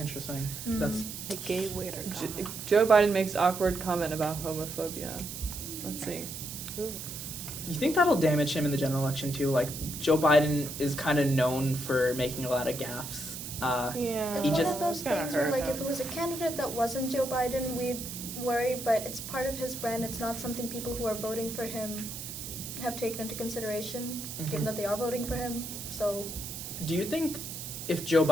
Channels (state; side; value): noise; right; hiss, 8 dB below the sound